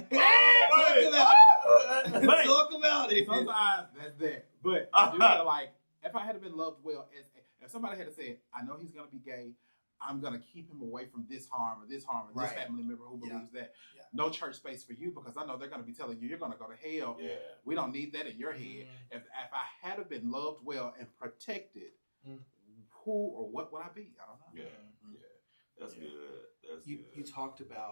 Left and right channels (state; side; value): inverted; both; correlation -1.00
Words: Talk about it. sometimes that's that. But I do feel like if I had been loved well, if somebody had said, I know he's going to be gay, I'm going to keep him away from this harm or this family member who believes that. Yeah. No church space for you, because I know they're going to be telling you, you're going to go to hell. Yeah. We don't need that in your head. If I had have been loved well and protected, who or what would I be? I don't know. Yeah. That's good. That's You good. talked